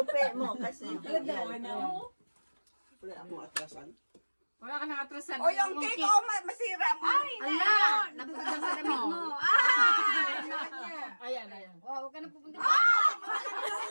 mo kasi. Wala akong atrasan. Wala ka nakatrasan. O yung cake, masira mo. Ay, Ala! Napagdang sa damit mo. Ayan. Wow, huwag ka na pupunta.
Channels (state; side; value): inverted; both; correlation -1.00